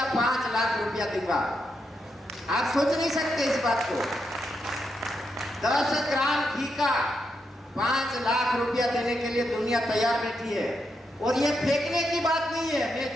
5 लाख रुपया दूंगा। आप सोच नहीं सकते इस बात को, 10 ग्राम घी का 5 लाख रुपया देने के लिए दुनिया तैयार बैठी है। और ये फेंकने की बात नहीं है, मैं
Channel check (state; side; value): normal; both; correlation 0.82